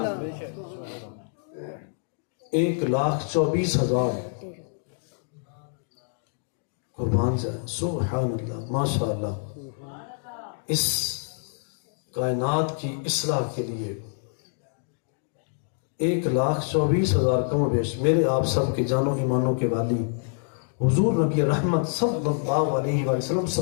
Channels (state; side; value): silent; right; digital silence